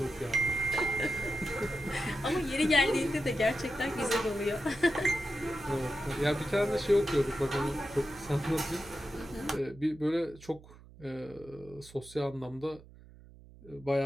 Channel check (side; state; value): right; noise; hum, 21 dB below the sound